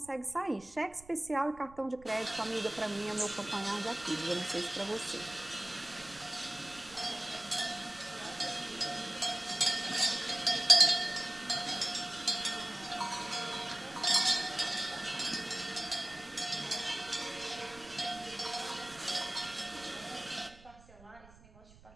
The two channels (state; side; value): noise; right; rumble, 22 dB below the sound